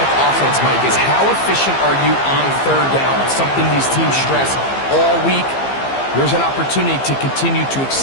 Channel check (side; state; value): right; late; 15 ms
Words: offense, Mike, is how efficient are you on 3rd down? It's something these teams stress all week. Here's an opportunity to continue to